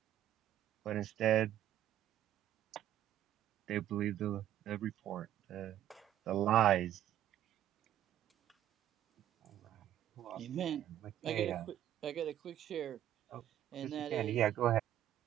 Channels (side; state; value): left; quieter; 11.7 dB